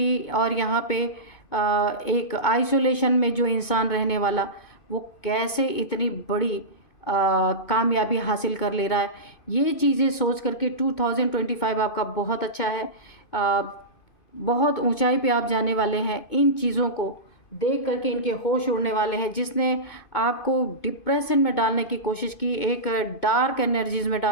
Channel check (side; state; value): right; late; 2.5 ms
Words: और यहाँ पे एक आइसोलेशन में जो इंसान रहने वाला, वो कैसे इतनी बड़ी कामयाबी हासिल कर ले रहा है। ये चीज़ें सोच करके 2025 आपका बहुत अच्छा है। बहुत ऊंचाई पे आप जाने वाले हैं। इन चीज़ों को देख करके इनके होश उड़ने वाले हैं। जिसने आपको डिप्रेशन में डालने की कोशिश की, एक डार्क एनर्जीज में